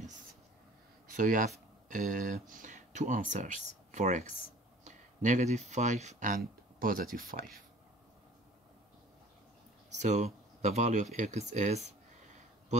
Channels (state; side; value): normal; both; correlation 0.48